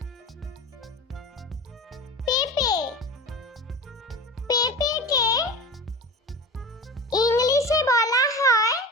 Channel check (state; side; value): normal; both; correlation 0.31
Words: পেঁপে, পেঁপেকে ইংলিশে বলা হয়